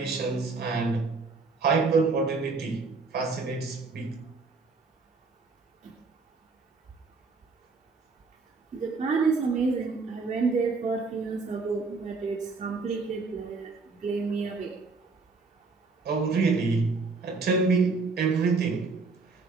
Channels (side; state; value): left; quieter; 4.1 dB